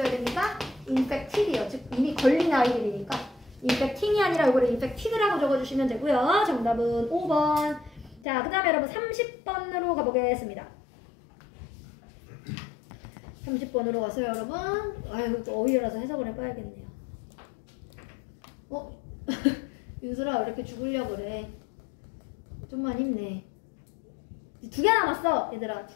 됩니까? infected이요. 즉 이미 걸린 아이들이니까 infecting이 아니라 이거를 infected라고 적어주시면 되고요. 정답은 5번. 자 그 다음에 여러분 30번으로 가보겠습니다. 30번으로 가서요 여러분. 아유 또 어휘라서 해석을 해봐야겠네요. 윤슬아 왜 이렇게 죽으려고 그래? 좀만 힘내. 2개 남았어 얘들아.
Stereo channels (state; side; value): drops out; right; at 8.2 s